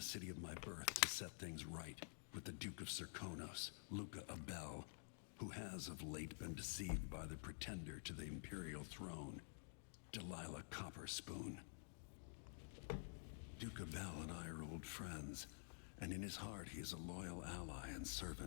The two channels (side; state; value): right; silent; digital silence